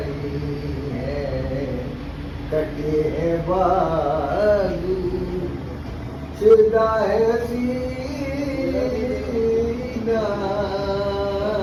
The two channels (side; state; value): both; identical; correlation 1.00